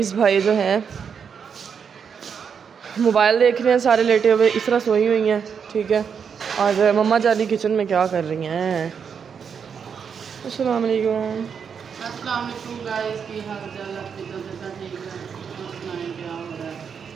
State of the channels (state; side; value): quieter; left; 6.8 dB